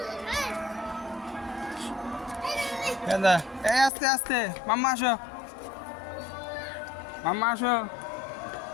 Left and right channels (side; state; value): right; drops out; at 3.9 s